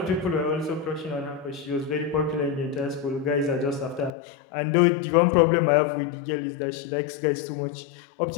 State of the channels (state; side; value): drops out; right; at 4.1 s